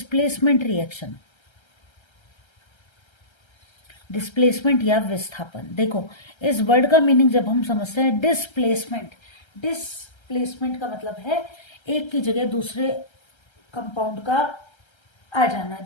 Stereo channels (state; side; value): late; right; 1.3 ms